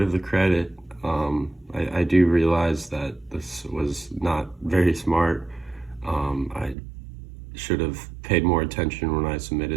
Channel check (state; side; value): drops out; left; at 6.8 s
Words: of the credit. I do realize that this was not very smart. I should have paid more attention when I